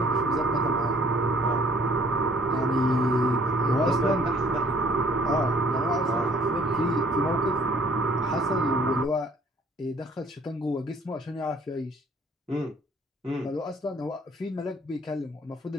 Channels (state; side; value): normal; both; correlation 0.58